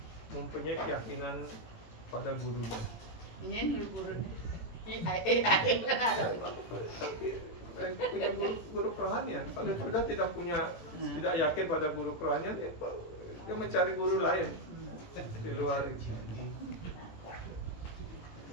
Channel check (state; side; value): late; right; 18 ms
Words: mempunyai keyakinan pada gurunya. Ini guru AI mana ada. Punya guru kerohanian. Kalau sudah tidak tidak yakin pada guru kerohanian, dia mencari guru lain di luar itu.